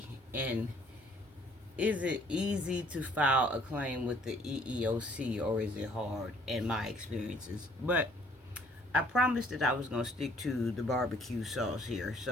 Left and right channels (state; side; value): normal; both; correlation 0.60